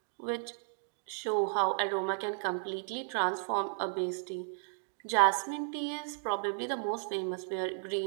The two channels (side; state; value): left; silent; digital silence